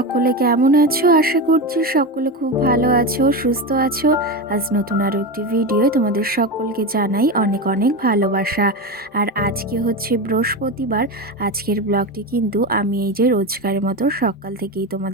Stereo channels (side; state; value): both; normal; correlation 0.19